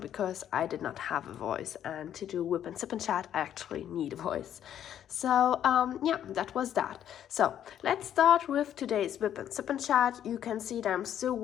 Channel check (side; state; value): right; quieter; 10.3 dB